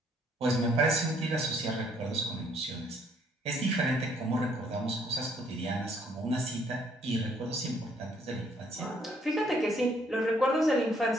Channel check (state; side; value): normal; both; correlation 0.66